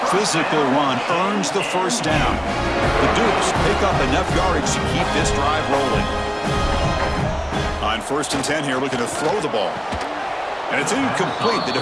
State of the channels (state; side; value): identical; both; correlation 1.00